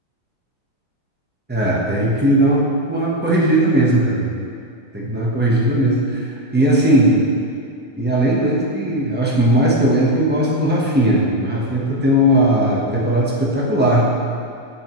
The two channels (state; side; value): normal; both; correlation 0.09